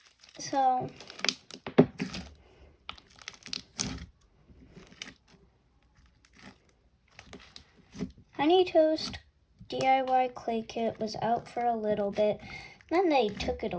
So, Honey Toast DIY clay kit was out for a little bit. Then they took it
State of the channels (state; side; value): identical; both; correlation 1.00